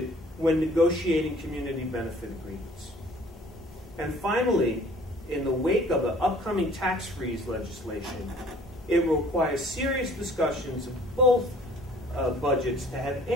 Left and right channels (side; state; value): both; normal; correlation 0.53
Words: when negotiating community benefit agreements. And finally, in the wake of the upcoming tax freeze legislation, it will require serious discussions of both budgets to have